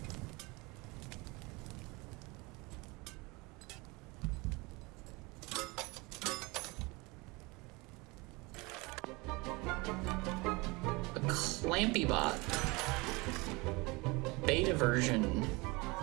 A Clampy Bot. Beta version.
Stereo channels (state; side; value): quieter; left; 25.3 dB